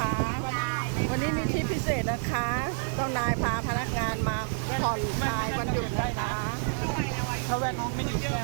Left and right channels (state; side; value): silent; left; 59 dB below the other